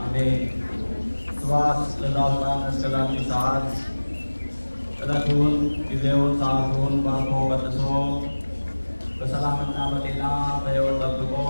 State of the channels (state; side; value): inverted; both; correlation -1.00